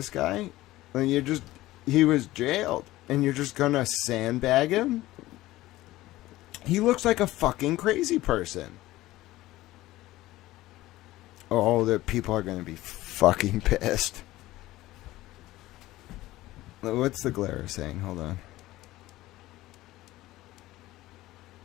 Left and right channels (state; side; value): quieter; right; 17.0 dB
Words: guy? He was jailed. and you're just gonna sandbag him? He looks like a fucking crazy person. Oh, the people are gonna be fucking pissed. What's the glare saying? Hold on.